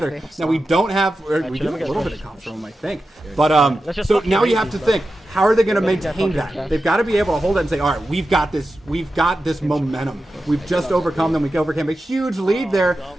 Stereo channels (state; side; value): normal; both; correlation 0.92